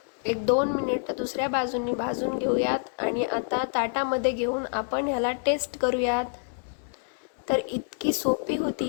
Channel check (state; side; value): silent; right; digital silence